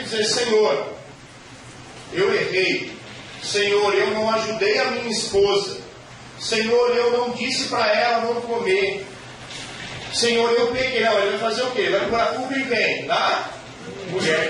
dizer: Senhor, eu errei, Senhor, eu não ajudei a minha esposa, Senhor, eu não disse para ela não comer, Senhor, eu peguei. Não, ele vai fazer o quê? Vai pôr a culpa em quem? Tá? Mulher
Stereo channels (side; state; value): both; identical; correlation 1.00